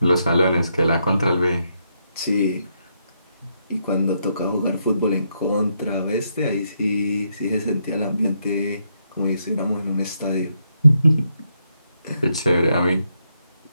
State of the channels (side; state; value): both; inverted; correlation -0.79